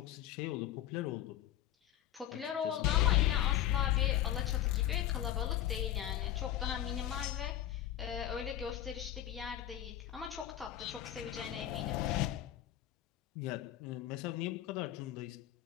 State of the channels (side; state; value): right; quieter; 12.2 dB